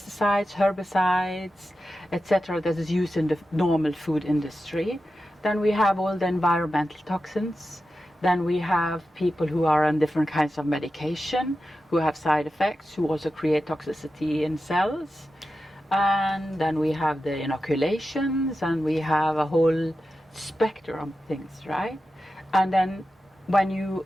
herbicides, etc. that is used in the normal food industry. Then we have all the environmental toxins. Then we have people who are on different kinds of medication, who have side effects, who also create toxicity in cells. And then we have the inoculations, and we have a whole spectrum of things, right? And then when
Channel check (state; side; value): normal; both; correlation 0.91